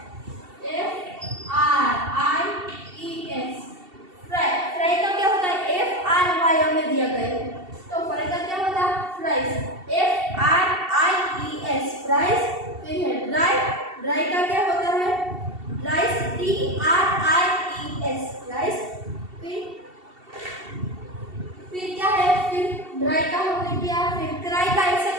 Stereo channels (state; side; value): late; left; 2.7 ms